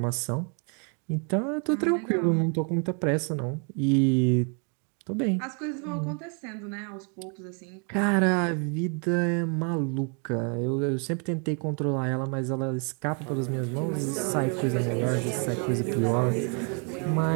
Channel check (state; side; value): quieter; left; 38.6 dB